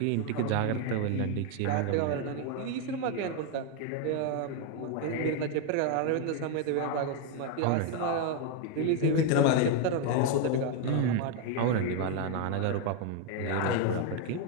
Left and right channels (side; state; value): both; different; correlation 0.01